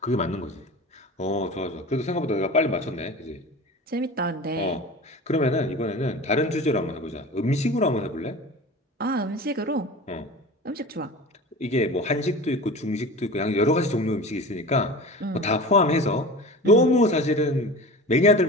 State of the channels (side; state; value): both; normal; correlation 0.34